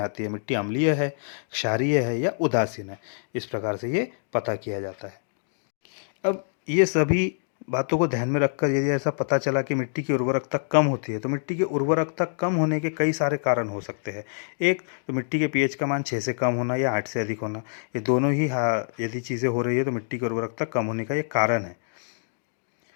आती है, मिट्टी अम्लीय है, क्षारीय है या उदासीन है। इस प्रकार से ये पता किया जाता है। अब ये सभी बातों को ध्यान में रखकर यदि ऐसा पता चला कि मिट्टी की उर्वरकता कम होती है, तो मिट्टी की उर्वरकता कम होने के कई सारे कारण हो सकते हैं। एक तो मिट्टी के पीएच का मान 6 से कम होना या 8 से अधिक होना, ये दोनों ही यदि चीज़ें हो रही है तो मिट्टी की उर्वरकता कम होने का ये कारण है।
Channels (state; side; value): silent; right; digital silence